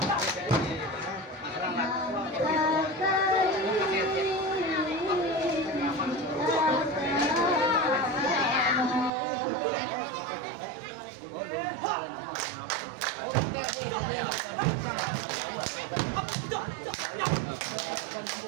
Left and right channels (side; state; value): left; drops out; at 9.1 s